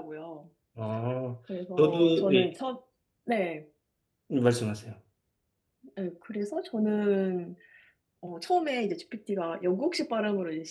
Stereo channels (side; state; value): both; identical; correlation 1.00